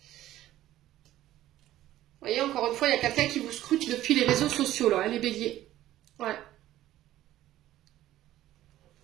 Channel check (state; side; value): quieter; left; 14.1 dB